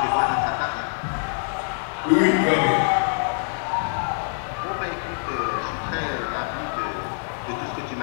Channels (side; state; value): right; silent; digital silence